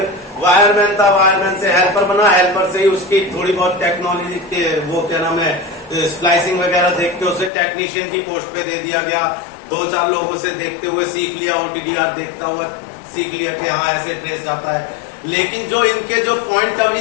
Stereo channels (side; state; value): right; drops out; at 7.5 s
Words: वायरमैन था, वायरमैन से हेल्पर बना, हेल्पर से ही उसकी थोड़ी बहुत टेक्नोलॉजी के वो क्या नाम है स्प्लाइसिंग वगैरह देख के उसे टेक्नीशियन की पोस्ट पे दे दिया गया। 2-4 लोगों से देखते हुए सीख लिया, OTDR देखता हुआ सीख लिया कि हाँ ऐसे ट्रेस जाता है। लेकिन जो इनके जो पॉइंट अभी